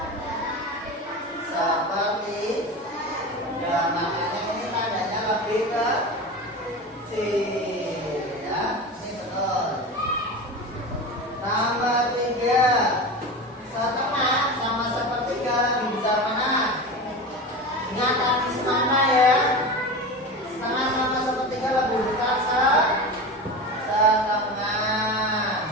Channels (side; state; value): both; normal; correlation 0.27